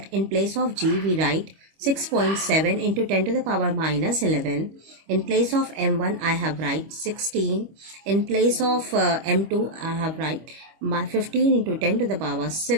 In place of G, we write 6.7 into 10 to the power minus 11. In place of m1, I have write 16. In place of m2, I have write 15 into 10 to the power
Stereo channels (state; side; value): late; left; 25 ms